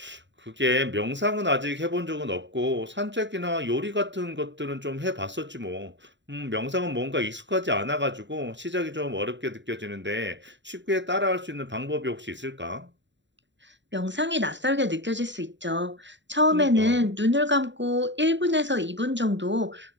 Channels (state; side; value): late; left; 0.53 ms